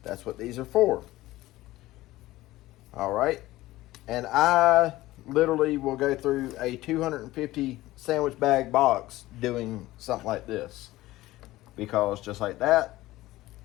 that's what these are for. All right. And I literally will go through a 250 sandwich bag box doing something like this. Because just like that,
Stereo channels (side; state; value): right; quieter; 17.1 dB